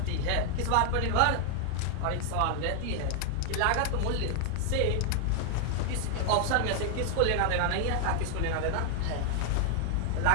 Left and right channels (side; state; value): both; different; correlation 0.00